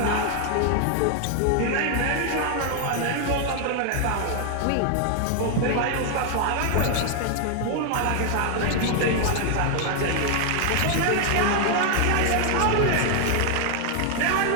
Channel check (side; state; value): both; different; correlation 0.00